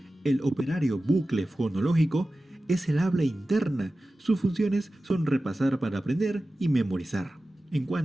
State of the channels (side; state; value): both; normal; correlation 0.95